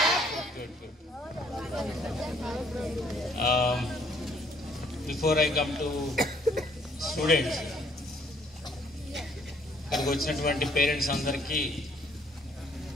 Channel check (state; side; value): normal; both; correlation 0.64